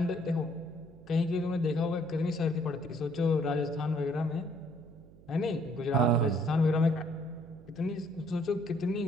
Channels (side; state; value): right; noise; hum, 23 dB below the sound